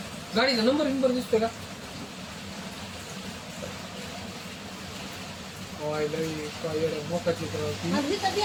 गाडीचा नंबर दिसतोय का मोकाची अगदी कधी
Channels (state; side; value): identical; both; correlation 1.00